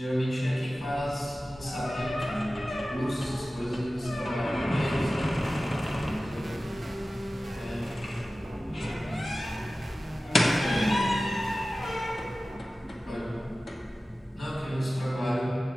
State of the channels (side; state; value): both; normal; correlation 0.96